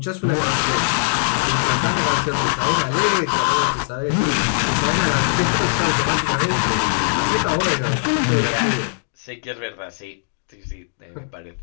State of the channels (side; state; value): right; silent; digital silence